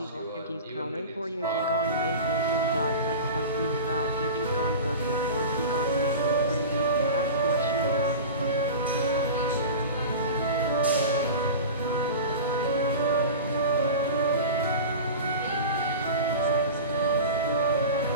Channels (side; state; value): both; inverted; correlation -0.31